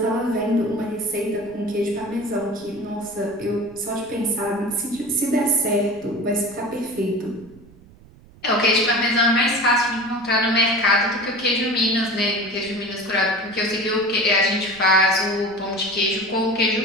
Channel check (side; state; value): right; noise; rumble, 24 dB below the sound